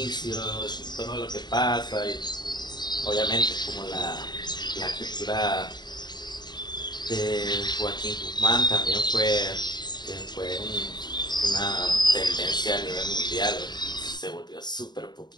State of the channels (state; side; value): late; right; 0.21 ms